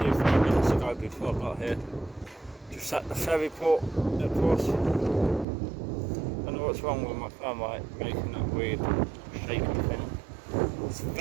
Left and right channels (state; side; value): drops out; left; at 5.5 s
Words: 5 minutes ago before I got here. Just at the ferry port, of course. Don't know what's wrong with my phone, right? Making that weird shaking thing. It's